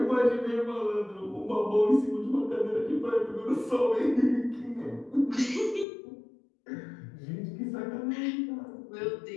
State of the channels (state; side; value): drops out; right; at 5.9 s